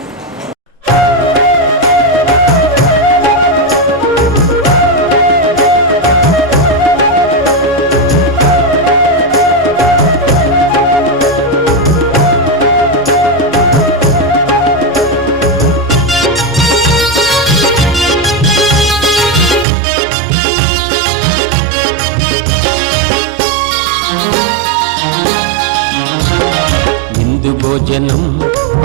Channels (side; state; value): left; drops out; at 19.7 s